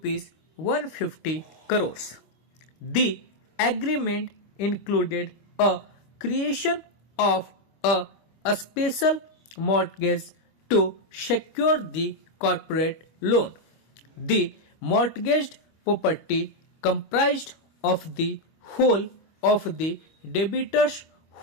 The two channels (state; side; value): late; right; 25 ms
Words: 150 crores. The agreement included a creation of a special mortgage to secure the corporate loan. The mortgaged property comprised of the whole of the debitor's